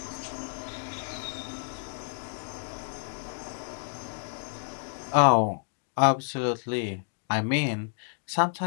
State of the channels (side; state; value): right; silent; digital silence